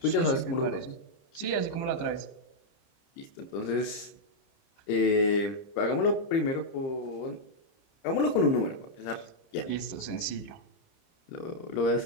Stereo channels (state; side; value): late; right; 30 ms